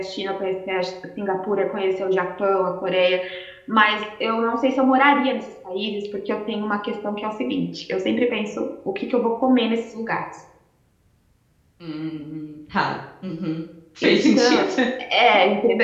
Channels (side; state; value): both; identical; correlation 1.00